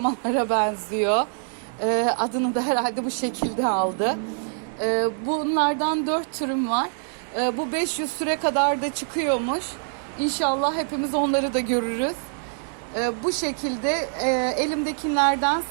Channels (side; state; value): left; silent; digital silence